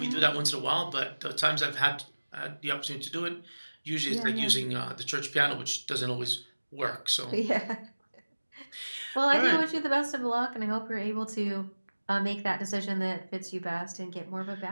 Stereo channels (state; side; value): inverted; both; correlation -1.00